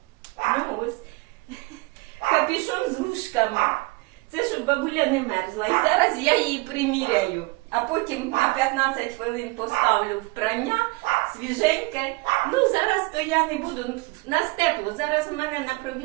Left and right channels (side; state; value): left; quieter; 24.5 dB